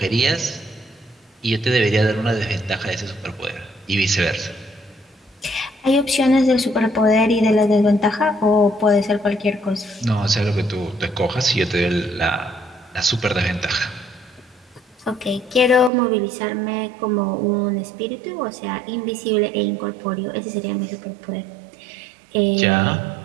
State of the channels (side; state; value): left; drops out; at 15.9 s